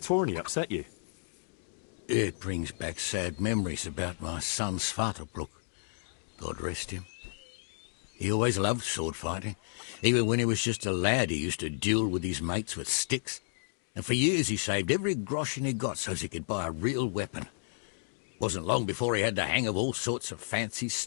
upset you? It brings back sad memories about my son Svartalfluk. God rest him. He always loved sword fighting. Even when he was just a lad, he used to duel with his mates with sticks. And for years he saved every groschen he got so he could buy a real weapon. Wasn't long before he had the hang of all sorts of fancy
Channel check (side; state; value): right; silent; digital silence